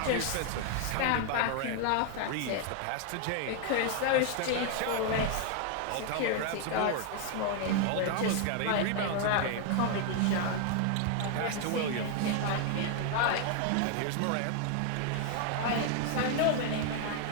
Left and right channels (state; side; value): different; both; correlation 0.00